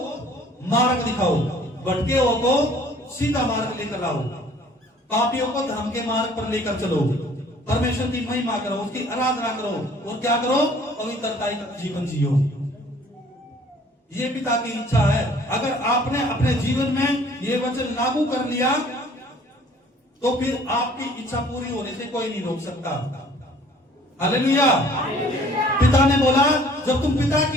मार्ग दिखाओ, भटके हुओं को सीधा मार्ग लेकर आओ, पापियों को धर्म के मार्ग पर लेकर चलो, परमेश्वर की महिमा करो, उसकी आराधना करो और क्या करो? पवित्रता का जीवन जियो। ये पिता की इच्छा है। अगर आपने अपने जीवन में ये वचन लागू कर लिया तो फिर आपकी इच्छा पूरी होने से कोई नहीं रोक सकता। हालेलुया। पिता ने बोला जब तुम पिता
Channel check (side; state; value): both; normal; correlation 0.55